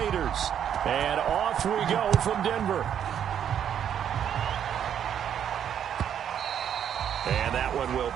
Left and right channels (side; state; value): left; quieter; 9.1 dB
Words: And off we go from Denver. And that one will